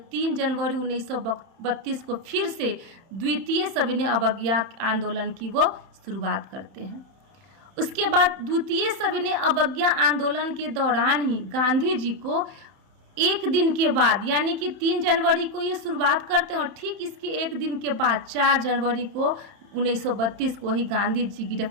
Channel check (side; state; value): left; late; 31 ms